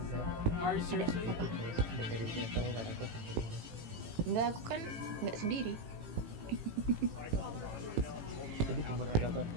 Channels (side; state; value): left; late; 18 ms